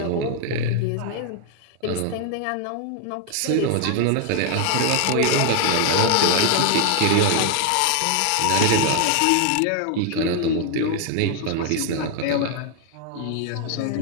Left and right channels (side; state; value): both; different; correlation 0.00